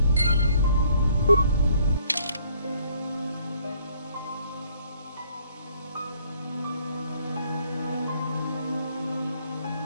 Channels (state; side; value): inverted; both; correlation -0.63